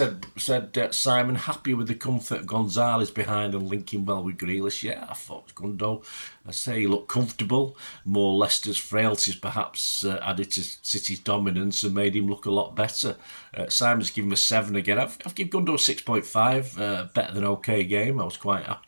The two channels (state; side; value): inverted; both; correlation -1.00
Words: Simon. Happy with the comfort of Gonzalez behind and linking well with Grealish. Yeah, I thought Gundo. I say he looked comfortable. More Leicester's frailties perhaps added to City's dominance and made him look a lot better. Simon's given him a 7 again. I've given Gundo a 6.5. Better than okay game. I was quite